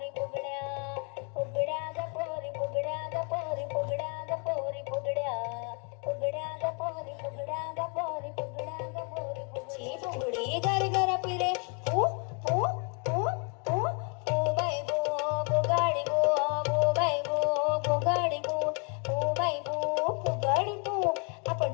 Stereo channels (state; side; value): quieter; right; 37.1 dB